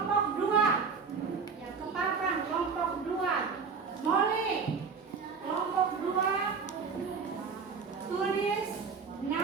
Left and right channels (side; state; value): left; quieter; 5.4 dB